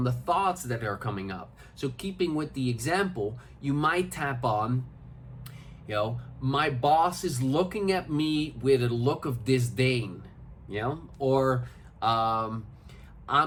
the thoughts that are coming up. So keeping with the example, you might tap on, my boss is looking at me with a look of disdain, or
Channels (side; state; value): both; identical; correlation 1.00